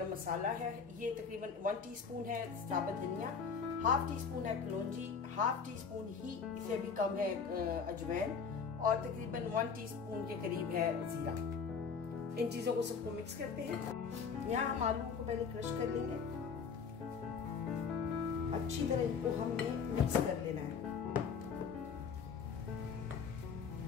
मसाला है, ये तकरीबन 1 टीस्पून है साबुत धनिया, 1/2 टीस्पून है कलौंजी, 1/2 टीस्पून ही से भी कम है अजवाइन, और तकरीबन 1 टीस्पून के करीब है जीरा। इन चीजों को सबको मिक्स करते हैं। यहाँ हम आलू को पहले क्रश कर लेंगे, अच्छी तरह इनको हमने मिक्स कर लेना है।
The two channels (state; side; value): quieter; right; 5.9 dB